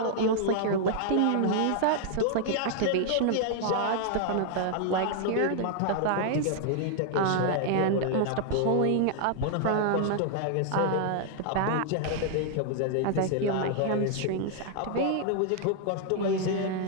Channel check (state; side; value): different; both; correlation -0.01